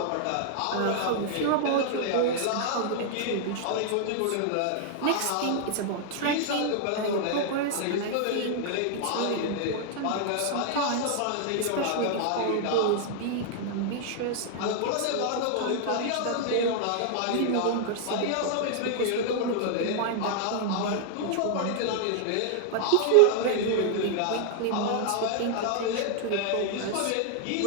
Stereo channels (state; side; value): different; both; correlation 0.00